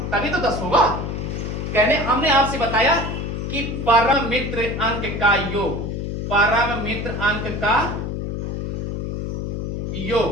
तभी तो 10 होगा। कहने हमने आपसे बताया कि परम मित्र अंक का योग, परम मित्र अंक का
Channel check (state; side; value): noise; left; hum, 3 dB below the sound